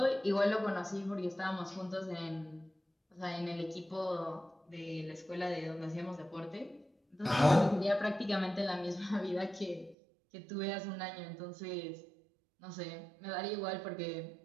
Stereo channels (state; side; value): drops out; left; at 10.0 s